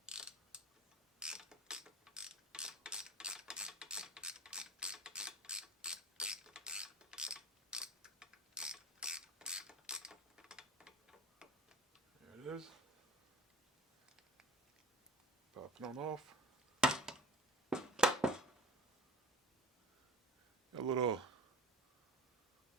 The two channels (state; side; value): normal; both; correlation 0.38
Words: there it is. Pop it on off. A little